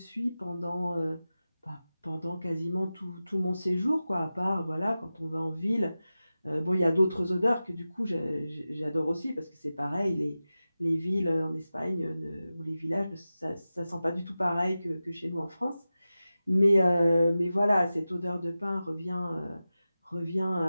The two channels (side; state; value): both; inverted; correlation -0.94